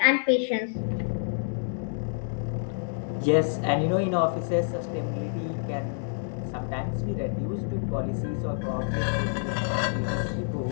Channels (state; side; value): silent; right; digital silence